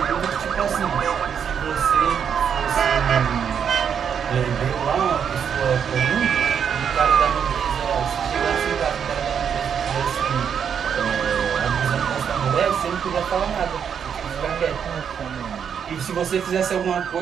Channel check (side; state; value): left; quieter; 7.6 dB